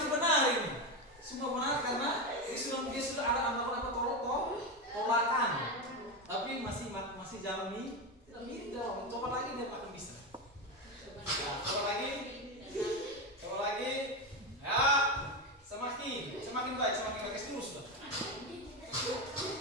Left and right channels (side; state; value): both; normal; correlation 0.14